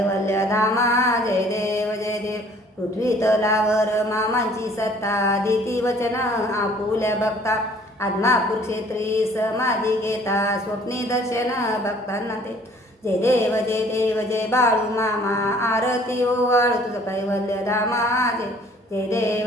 धामा जय देव पृथ्वी तलावर मामांची सत्ता देती वचन आपुल्या बघता आदमापूर क्षेत्री समाधी घेता स्वप्नी दर्शन भक्तांना ते जय देव जय बाळू मामा आरती ओवाळू तुझं कैवल्य धामा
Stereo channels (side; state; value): both; normal; correlation 0.55